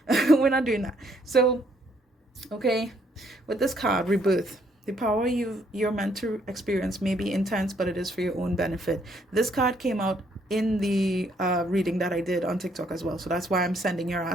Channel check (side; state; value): both; normal; correlation 0.69